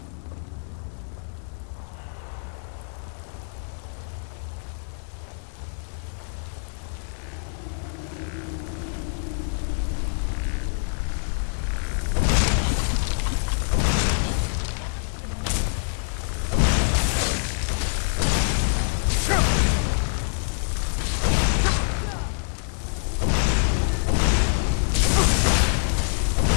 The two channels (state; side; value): silent; right; digital silence